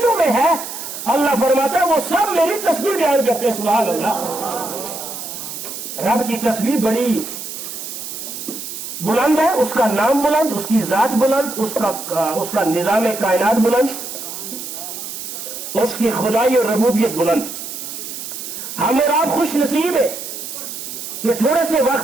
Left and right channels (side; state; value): right; noise; hiss, 8 dB below the sound